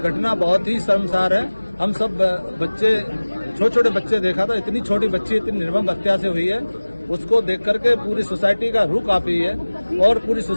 बहुत ही शर्मसार है। हम सब बच्चे, छोटे छोटे बच्चे देखा था, इतनी छोटी बच्ची इतनी निर्मम हत्या से हुई है, उसको देख करके पूरी सोसाइटी का रूह कांपी है और पूरी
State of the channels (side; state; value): both; inverted; correlation -1.00